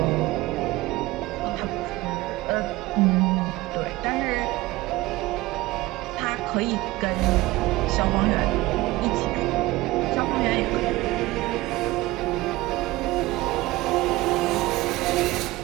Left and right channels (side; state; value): left; quieter; 19.2 dB